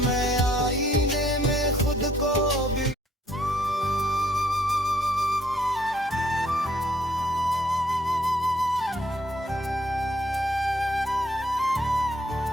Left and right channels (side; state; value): both; normal; correlation 0.65